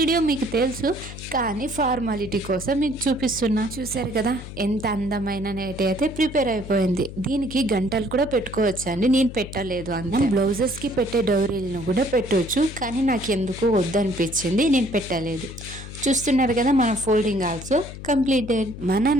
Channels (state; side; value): noise; left; hum, 12 dB below the sound